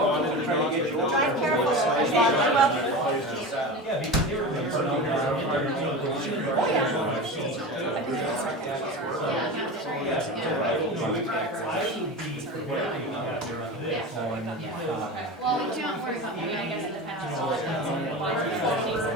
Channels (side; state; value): both; normal; correlation 0.28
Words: they're trying to get you. Drive careful. Yeah, because they were. well, we can't worry about me, I guess, in the past.